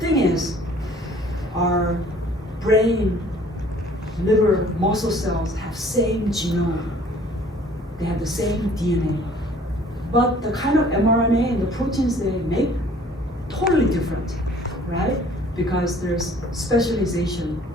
is, our brain, liver, muscle cells have same genome. They have the same DNA. But the kind of mRNA and the proteins they make, totally different, right? Because there's specialization.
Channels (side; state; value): both; normal; correlation 0.54